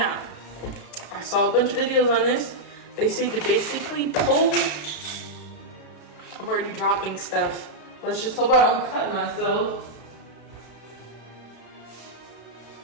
I saw a bunch of videos on this. They say to basically pull. I'm already dropping stuff. Let's just hope I don't cut myself.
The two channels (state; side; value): late; right; 35 ms